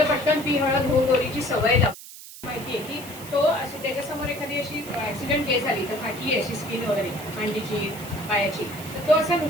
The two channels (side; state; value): right; noise; hiss, 15 dB below the sound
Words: पटकन पी हळद हो गोरीची सवय लागते. माहितीये की तो अशी त्याच्यासमोर एखादी अशी ऍक्सिडेंट केस आली तर फाटली अशी स्किन वगैरे मांडीची पायाची, तर तो असा